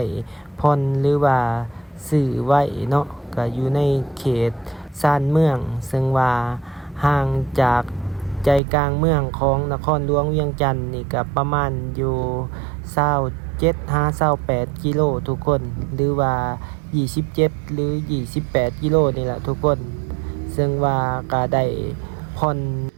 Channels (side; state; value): left; drops out; at 8.6 s